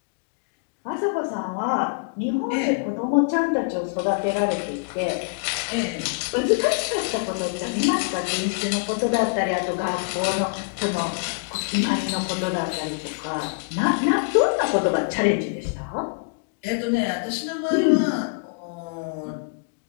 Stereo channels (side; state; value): right; quieter; 35.0 dB